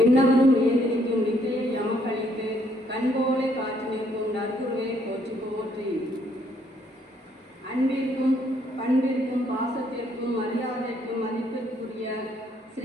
ஏதிரிக்கும் வித்தையை எமக்களித்து கண்போலை காற்று நிற்கும் நற்குருவே போற்றி போற்றி. அன்பிற்கும் பண்பிற்கும் பாசத்திற்கும் மரியாதைக்கும் மதிப்பிற்குரிய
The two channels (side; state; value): both; normal; correlation 0.69